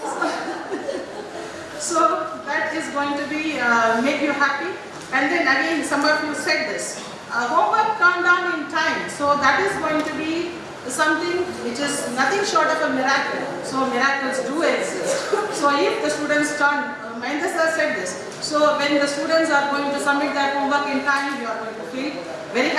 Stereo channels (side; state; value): both; identical; correlation 1.00